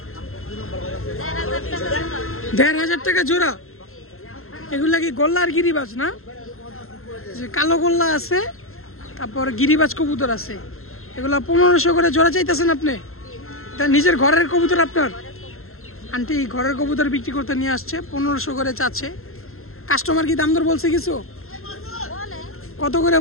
1500 টাকা জোড়া। এগুলা কি গোল্লা আর গিরিবাজ না? যে কালো গোল্লা আছে, তারপর গিরিবাজ কবুতর আছে। এগুলা 1500 করে জোড়া চাইতেছেন আপনি? তা নিজের ঘরের কবুতর আপনার? আন্টি ঘরের কবুতর বিক্রি করতে নিয়ে আসছে, 1500 করে চাচ্ছে। কাস্টমার কি দাম দর বলছে কিছু? কত করে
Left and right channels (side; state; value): right; late; 0.62 ms